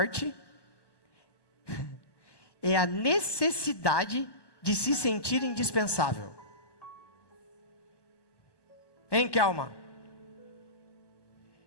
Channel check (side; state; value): right; late; 1.1 ms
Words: é a necessidade de se sentir indispensável. Hein, Kelma?